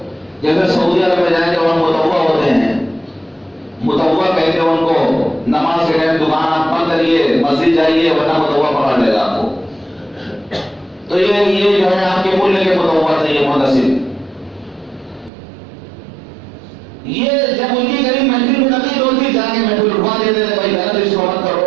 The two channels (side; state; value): left; drops out; at 15.3 s